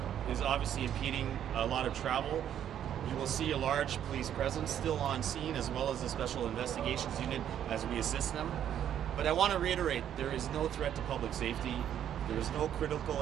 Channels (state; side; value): quieter; left; 10.0 dB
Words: is obviously impeding a lot of travel. You will see a large police presence still on scene, as well as the Special Investigations Unit as we assist them. But I want to reiterate, there is no threat to public safety. There is no